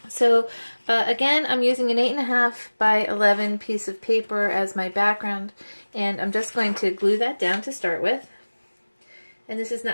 So again, I'm using an 8.5 by 11 piece of paper as my background, and I'm just going to glue that down to start with. And this is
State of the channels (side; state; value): both; inverted; correlation -1.00